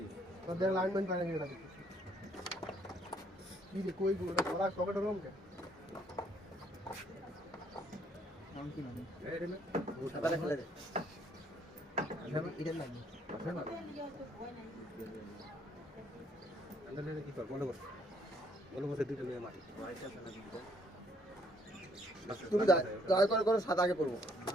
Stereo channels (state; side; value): normal; both; correlation 0.66